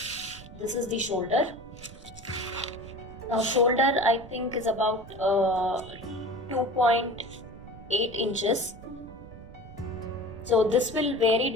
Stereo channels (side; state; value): right; noise; rumble, 17 dB below the sound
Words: This is the shoulder. Now shoulder I think is about 2.8 inches. So this will vary